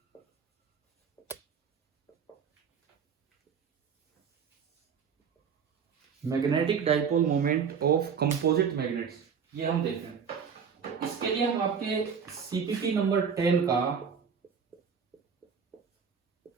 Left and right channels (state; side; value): quieter; left; 6.6 dB